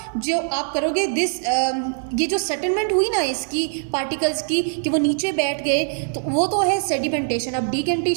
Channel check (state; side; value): silent; left; 61 dB below the other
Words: जो आप करोगे ये जो सेटलमेंट हुई ना इसकी पार्टिकल्स की कि वो नीचे बैठ गए, तो वो तो है सेडिमेंटेशन। अब